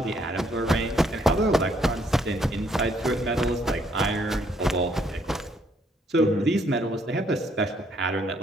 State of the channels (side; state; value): both; normal; correlation 0.68